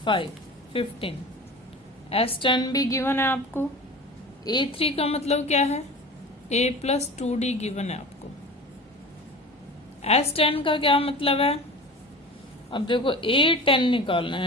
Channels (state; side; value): normal; both; correlation 0.36